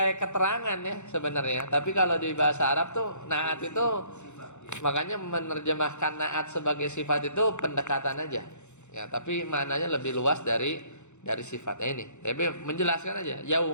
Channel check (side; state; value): right; late; 0.83 ms